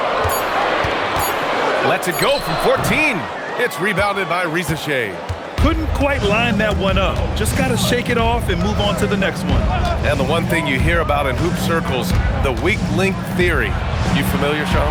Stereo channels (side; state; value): both; identical; correlation 1.00